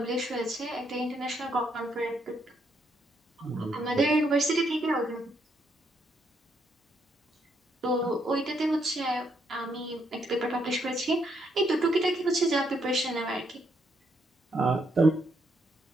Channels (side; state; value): both; normal; correlation 0.75